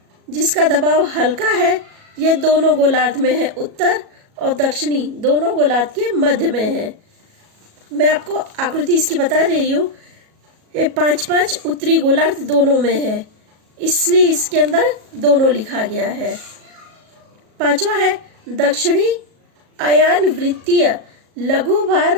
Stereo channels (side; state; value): left; late; 37 ms